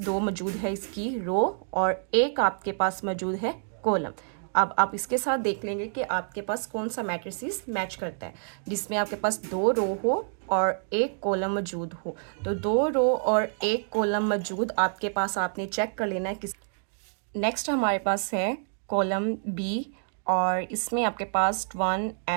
दो मौजूद है इसकी रो और एक आपके पास मौजूद है कॉलम। अब आप इसके साथ देख लेंगे कि आपके पास कौन सा मैट्रिसेस मैच करता है, जिसमें आपके पास दो रो हो और एक कॉलम मौजूद हो। तो दो रो और एक कॉलम मौजूद आपके पास, आपने चेक कर लेना है किस। नेक्स्ट हमारे पास है कॉलम बी और इसमें आपके पास 1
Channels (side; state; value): left; silent; digital silence